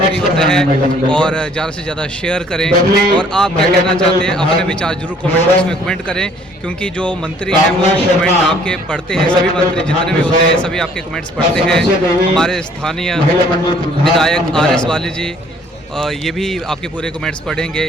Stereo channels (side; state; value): both; normal; correlation 0.58